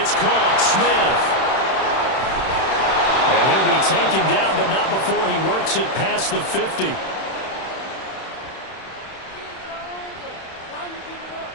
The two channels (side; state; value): right; late; 31 ms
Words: caught. Smith. And he'll be taken down, but not before he works it past the 50.